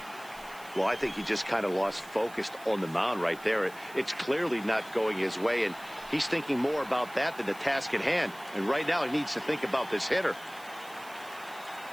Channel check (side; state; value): right; noise; hiss, 21 dB below the sound